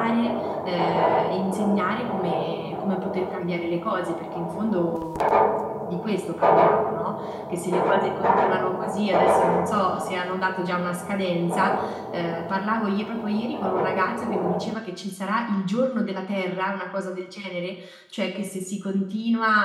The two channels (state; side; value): identical; both; correlation 1.00